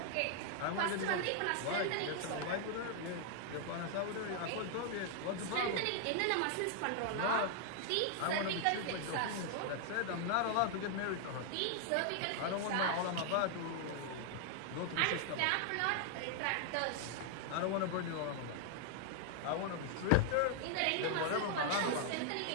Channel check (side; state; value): both; different; correlation 0.00